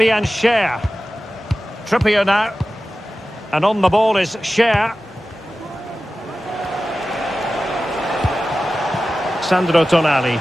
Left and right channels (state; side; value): normal; both; correlation 0.95